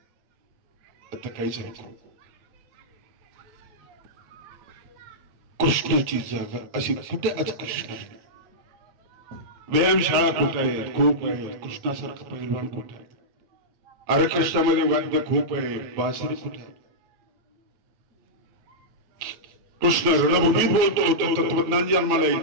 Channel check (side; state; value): left; late; 9.1 ms